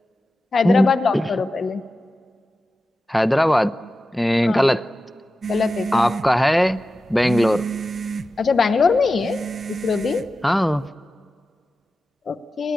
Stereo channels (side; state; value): both; normal; correlation 0.93